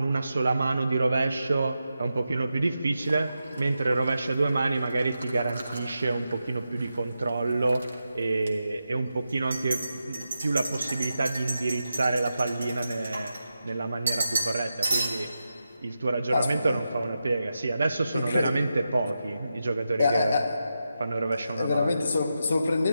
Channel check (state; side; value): inverted; both; correlation -0.89